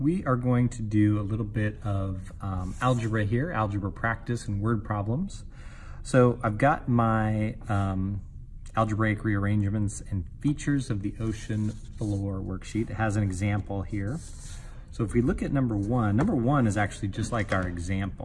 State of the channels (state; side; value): identical; both; correlation 1.00